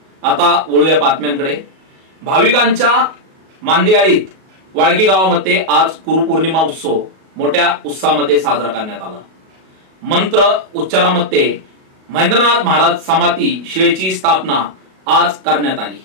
आता वळूया बातम्यांकडे। भाविकांच्या मांदियाळीत वाळकी गावामध्ये आज गुरुपौर्णिमा उत्सव मोठ्या उत्साहामध्ये साजरा करण्यात आला। मंत्र उच्चारामध्ये महेंद्रनाथ महाराज समाधी शिळेची स्थापना आज करण्यात आली।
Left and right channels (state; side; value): late; left; 37 ms